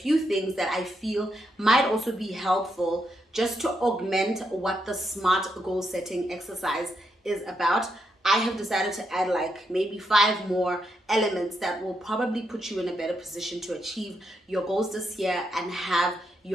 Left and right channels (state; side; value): normal; both; correlation 0.81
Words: things that I feel might also be helpful just to augment what the SMART goal setting exercise is about. I have decided to add like maybe 5 more elements that will probably put you in a better position to achieve your goals this year and have